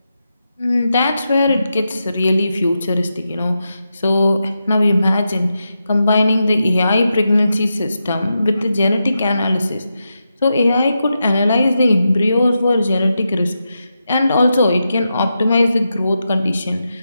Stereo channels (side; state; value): both; inverted; correlation -0.88